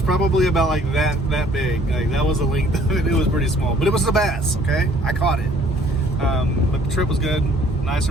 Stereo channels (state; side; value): normal; both; correlation 0.58